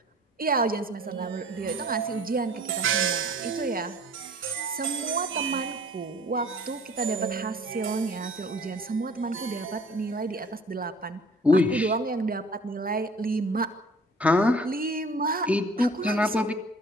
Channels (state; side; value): normal; both; correlation 0.50